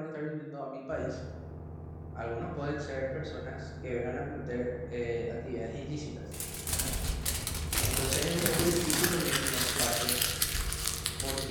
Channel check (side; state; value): both; identical; correlation 1.00